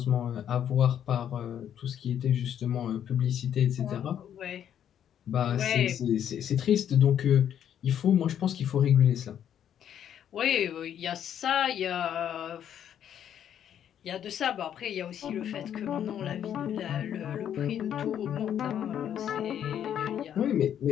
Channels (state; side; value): quieter; right; 9.7 dB